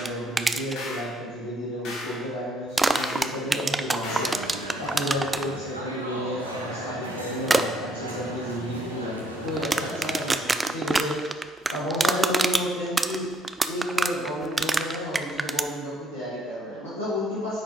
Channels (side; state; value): both; normal; correlation 0.68